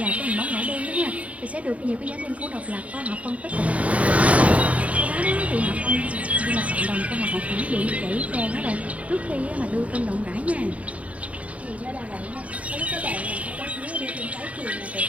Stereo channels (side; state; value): left; late; 0.067 ms